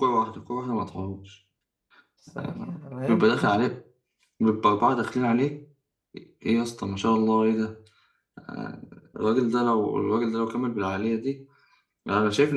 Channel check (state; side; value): identical; both; correlation 1.00